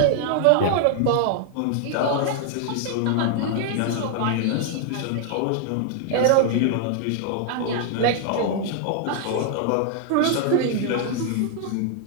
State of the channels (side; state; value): both; different; correlation 0.00